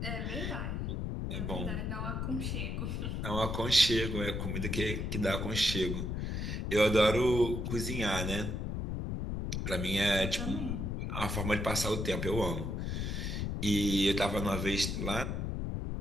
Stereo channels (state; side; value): noise; left; rumble, 2 dB below the sound